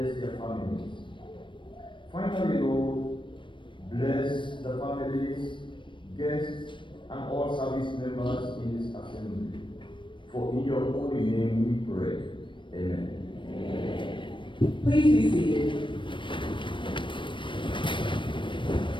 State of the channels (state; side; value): late; right; 0.24 ms